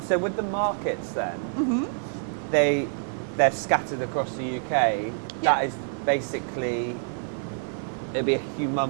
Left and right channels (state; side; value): silent; left; digital silence